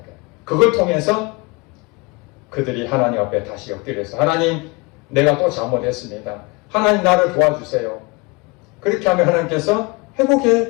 거예요. 그걸 통해서 그들이 하나님 앞에 다시 엎드려서 하나님 내가 또 잘못했습니다. 하나님 나를 도와주세요. 그렇게 하면 하나님께서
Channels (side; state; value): right; quieter; 27.6 dB